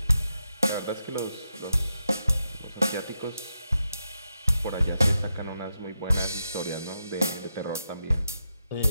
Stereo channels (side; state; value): both; inverted; correlation -0.86